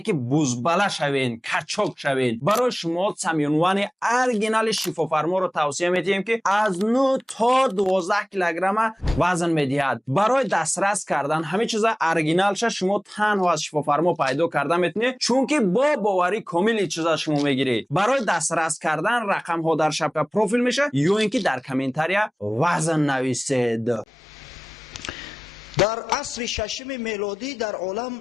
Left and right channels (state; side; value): normal; both; correlation 0.96